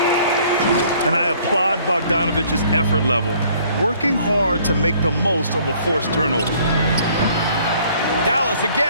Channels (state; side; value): inverted; both; correlation -0.58